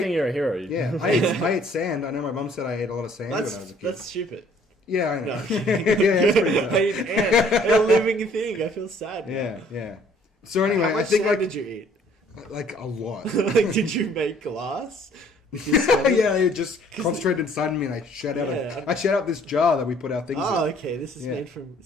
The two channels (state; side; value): normal; both; correlation 0.59